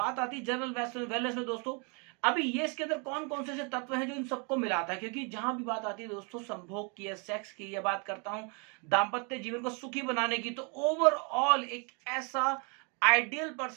आती है जनरल वेलनेस में दोस्तों। अभी ये इसके अंदर कौन कौन से तत्व हैं जो इन सबको मिलाता है, क्योंकि जहां भी बात आती है दोस्तों संभोग की या सेक्स की, या बात करता हूं दाम्पत्य जीवन को सुखी बनाने की, तो ओवरऑल एक ऐसा आइडियल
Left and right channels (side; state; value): left; quieter; 34.8 dB